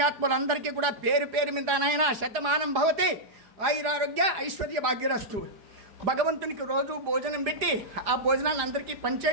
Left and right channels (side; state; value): left; late; 4.8 ms